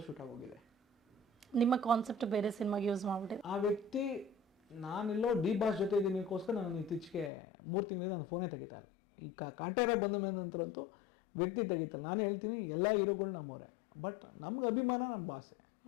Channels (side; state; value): right; drops out; at 7.3 s